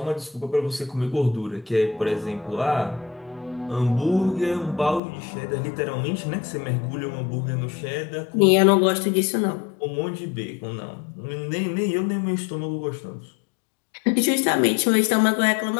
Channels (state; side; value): drops out; right; at 5.0 s